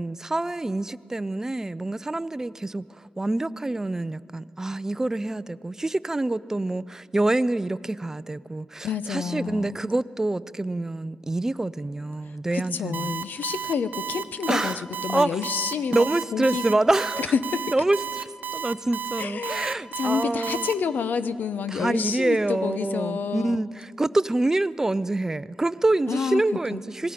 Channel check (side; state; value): both; normal; correlation 0.87